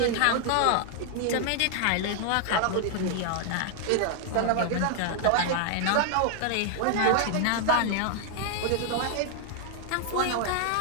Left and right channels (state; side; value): different; both; correlation 0.00